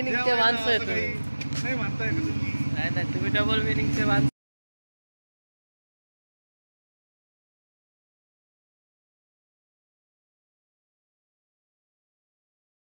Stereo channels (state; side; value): inverted; both; correlation -1.00